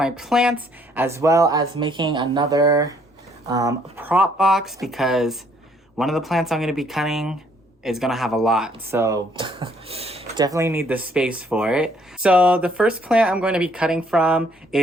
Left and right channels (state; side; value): normal; both; correlation 0.65